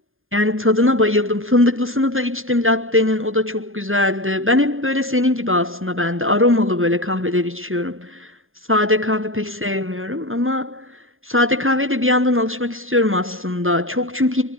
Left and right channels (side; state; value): left; late; 0.59 ms